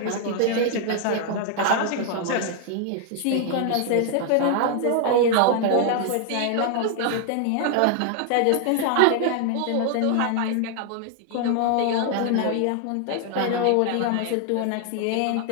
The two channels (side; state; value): both; different; correlation 0.00